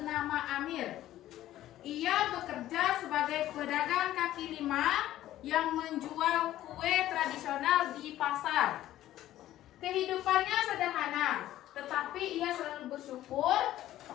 Amir. Ia bekerja sebagai pedagang kaki lima yang menjual kue tradisional di pasar. Kehidupannya sederhana, tetapi ia selalu bersyukur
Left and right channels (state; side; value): quieter; right; 13.7 dB